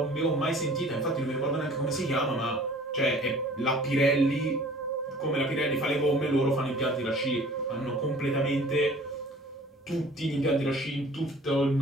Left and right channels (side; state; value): both; normal; correlation 0.49